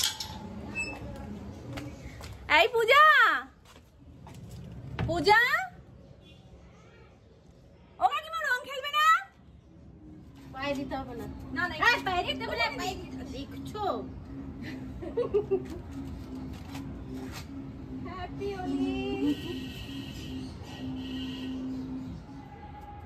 এই পূজা, পূজা, ও কাকিমা রং খেলবে না? পায়ে দিতে হবে না। না না, এই পায়ে দিতে বলে পায়ে দেখছো। হ্যাপি হোলি।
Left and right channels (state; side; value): identical; both; correlation 1.00